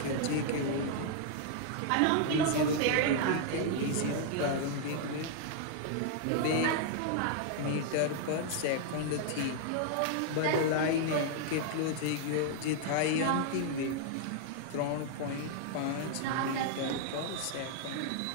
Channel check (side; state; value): both; different; correlation -0.01